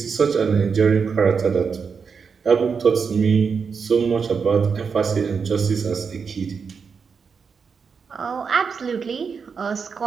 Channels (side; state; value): left; quieter; 5.8 dB